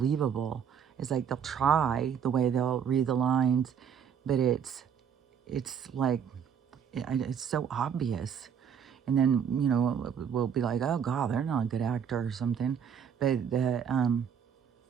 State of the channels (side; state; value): left; quieter; 7.8 dB